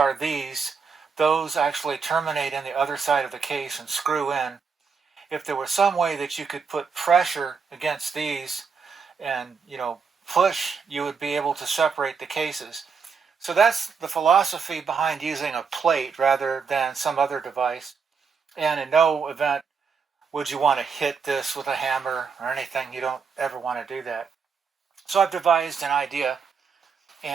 these. Those actually terminate in the other side of the case and screw in. If there was some way that you could put pressure against these and, push, you would be able to separate the cases. So that's the philosophy behind using a plate rather than some other device. And in no event would you want to hit this with a hammer or anything. You don't ever want to do that. So I've devised an idea,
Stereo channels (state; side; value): quieter; left; 5.7 dB